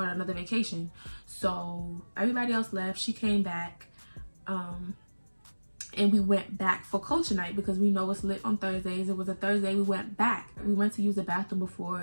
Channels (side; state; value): both; inverted; correlation -1.00